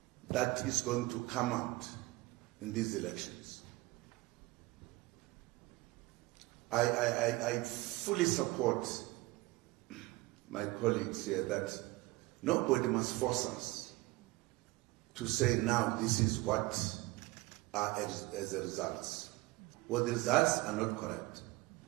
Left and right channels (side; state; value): left; quieter; 20.9 dB